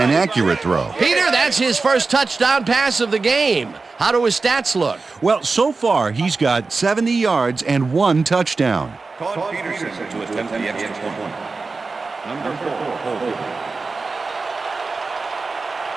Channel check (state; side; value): quieter; left; 4.0 dB